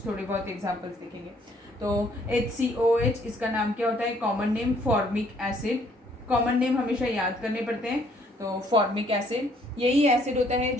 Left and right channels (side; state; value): both; normal; correlation 0.64